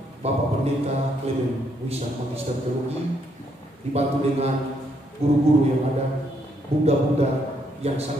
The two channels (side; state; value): both; normal; correlation 0.73